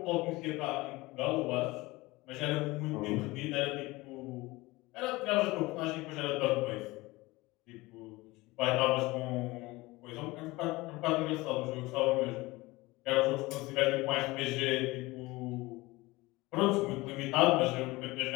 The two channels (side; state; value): right; quieter; 21.2 dB